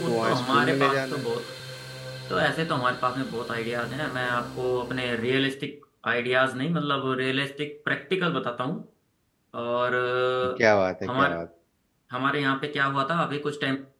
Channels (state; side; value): identical; both; correlation 1.00